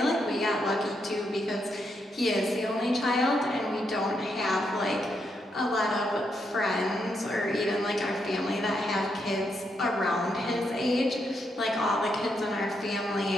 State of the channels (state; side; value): normal; both; correlation 0.80